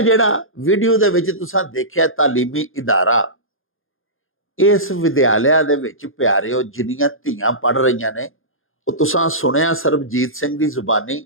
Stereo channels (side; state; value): right; late; 0.60 ms